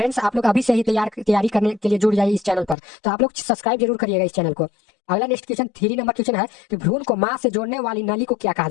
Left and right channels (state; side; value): drops out; right; at 2.8 s